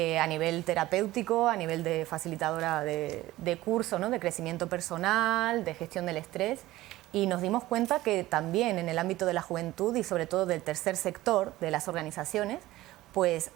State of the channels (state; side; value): quieter; left; 16.9 dB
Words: nivel terapéutico, a nivel de facilitadora de curso, ¿no?, de crecimiento personal, de gestión del estrés, y nos dimos cuenta que también en el ámbito de la juventud y sobre todo del tercer sector de las organizaciones, pues